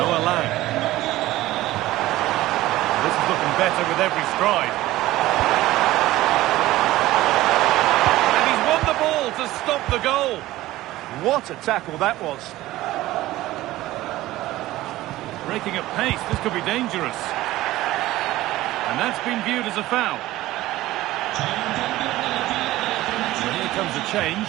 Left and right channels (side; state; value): left; quieter; 16.5 dB